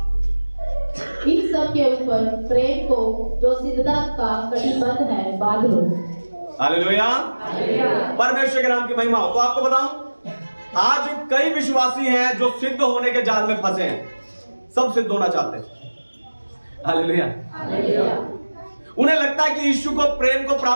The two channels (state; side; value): inverted; both; correlation -1.00